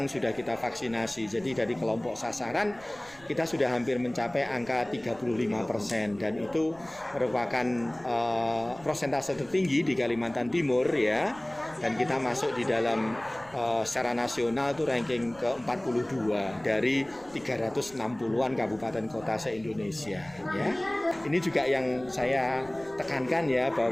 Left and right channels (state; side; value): noise; right; rumble, 23 dB below the sound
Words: sudah kita vaksinasi. Jadi dari kelompok sasaran kita sudah hampir mencapai angka 35%, dan itu merupakan persentase tertinggi di Kalimantan Timur ya. Dan kita masuk di dalam secara nasional itu ranking ke-42 dari 360-an kabupaten kota se-Indonesia ya. Ini juga yang saya tekankan ya,